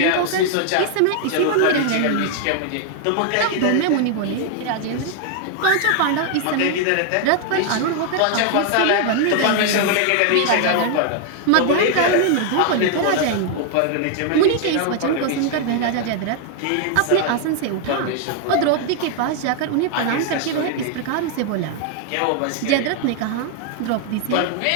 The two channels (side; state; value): both; different; correlation 0.00